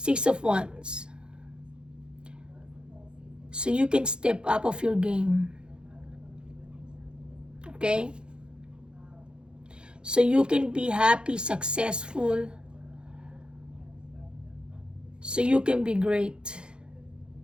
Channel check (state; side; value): late; left; 0.051 ms